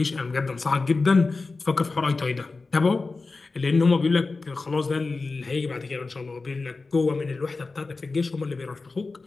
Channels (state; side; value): quieter; right; 3.8 dB